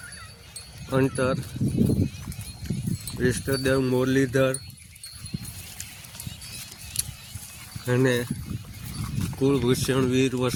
અંતર ઈષ્ટદેવ મુરલીધર અને કુળભૂષણ વીર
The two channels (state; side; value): identical; both; correlation 1.00